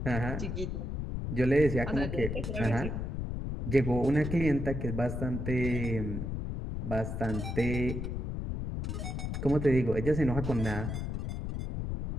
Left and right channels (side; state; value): left; noise; rumble, 3 dB below the sound